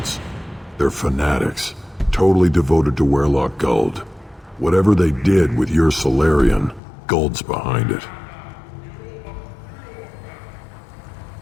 They're fanatics, totally devoted to Weirlock Guld. Whatever they did with your Solarian, Guld's behind it.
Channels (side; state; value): right; drops out; at 6.8 s